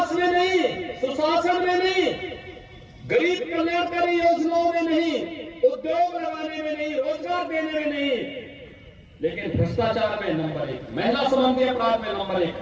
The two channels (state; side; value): identical; both; correlation 1.00